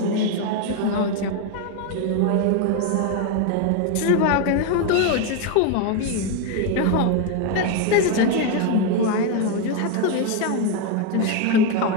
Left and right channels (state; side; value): different; both; correlation 0.01